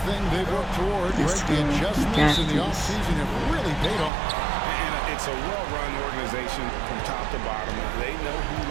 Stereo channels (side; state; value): left; drops out; at 4.1 s